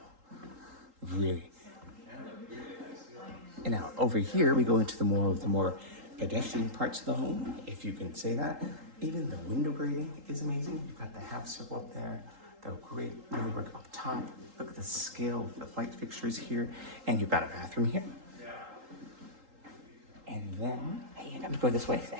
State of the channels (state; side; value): late; left; 3.8 ms